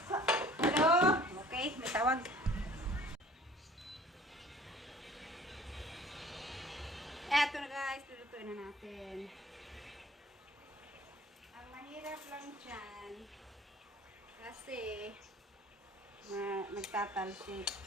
Hello? Okay, may tawag. Eto na guys, lulutuin na natin. Ang mahirap lang dyan, kasi nagtatalsik.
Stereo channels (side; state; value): both; normal; correlation 0.50